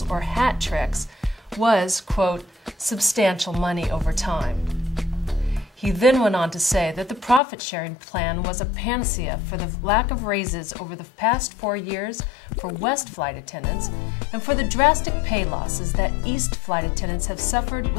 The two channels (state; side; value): drops out; right; at 7.4 s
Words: or hat tricks was, quote, substantial money over time. He then went on to say that the profit-sharing plan was a panacea for the lack of raises over the past 4 years for West flight attendants and for the drastic pay losses that East flight attendants have suffered